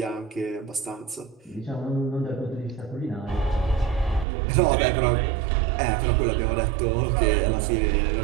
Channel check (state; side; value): drops out; left; at 4.2 s